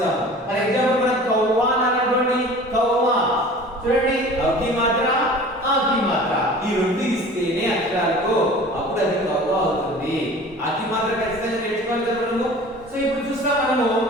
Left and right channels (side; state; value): both; normal; correlation 0.43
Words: ఫర్ ఎగ్జాంపుల్ మనం కవ్వా అన్నటువంటి కవ్వా చూడండి, అకి మాత్ర ఆకి మాత్ర ఈ రెండు ఇస్తేనే అక్షరాలకు అప్పుడు అది కవ్వా అవుతుంది. ఆకి మాత్ర ఖచ్చితంగా నేర్చుకోవాలి కదా మనము. సో ఇప్పుడు చూస్తాం మనము